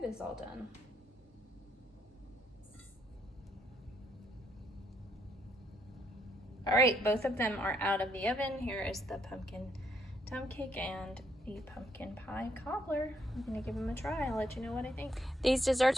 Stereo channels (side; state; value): both; normal; correlation 0.73